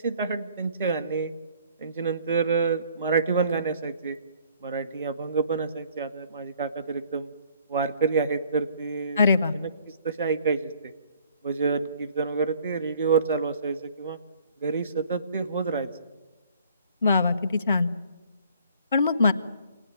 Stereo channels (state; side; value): inverted; both; correlation -0.58